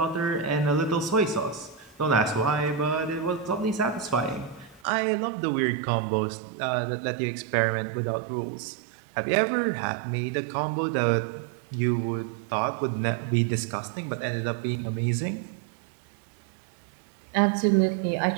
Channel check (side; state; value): left; drops out; at 4.8 s